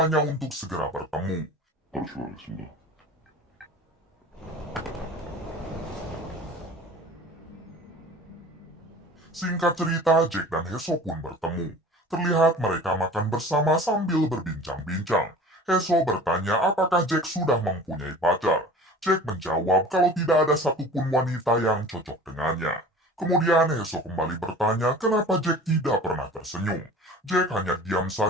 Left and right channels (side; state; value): both; normal; correlation 0.42